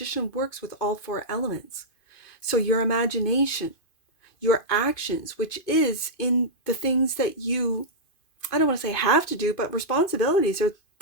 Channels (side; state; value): right; late; 2.5 ms